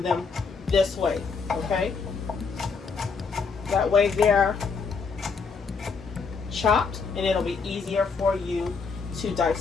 them this way. Okay, that way they're chopped and it'll be easier for you to dice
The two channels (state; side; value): quieter; right; 5.1 dB